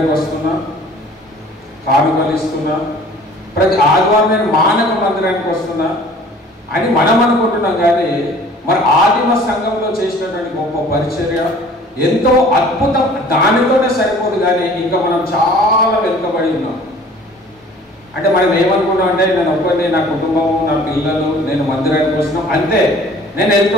వస్తున్నా, కానుకలు ఇస్తున్నా, ప్రతి ఆదివారం నేను మానక మందిరానికి వస్తున్నా అని మనం అనుకుంటున్నాం. కానీ మరి ఆదిమ సంఘంలో చేసినటువంటి గొప్ప పరిచర్య ఎంతో అద్భుతం, దానితోనే సరిపోదు. కానీ ఇంకా మనం చాలా వెనుకబడి ఉన్నాం. అంటే మనం ఏమనుకున్నాం అంటే, నేను ఒక్కరిని, నా కుటుంబము, నా పిల్లలు, నేను మందిరానికి వస్తున్నాం, అంతే, నేను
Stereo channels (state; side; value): normal; both; correlation 0.50